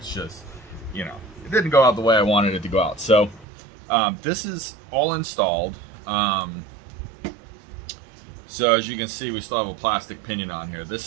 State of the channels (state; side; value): drops out; left; at 3.5 s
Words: just, you know, it didn't go out the way I wanted it to go out. So this is all installed. So as you can see, we still have a plastic pinion on here.